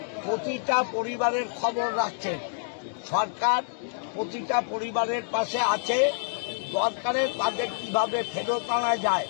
প্রতিটা পরিবারের খবর রাখছেন। সরকার প্রতিটা পরিবারের পাশে আছে। দরকারে তাদের কিভাবে ফেরত আনা যায়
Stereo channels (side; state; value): right; silent; digital silence